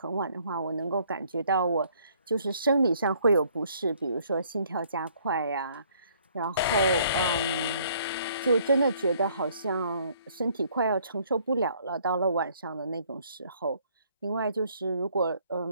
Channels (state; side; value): inverted; both; correlation -0.63